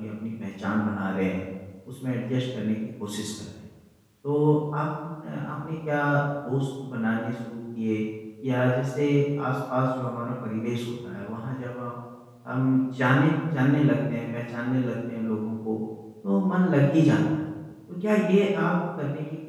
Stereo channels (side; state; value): both; identical; correlation 1.00